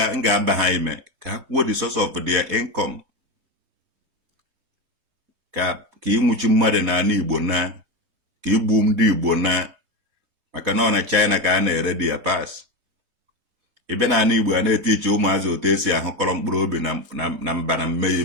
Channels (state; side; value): late; left; 3.2 ms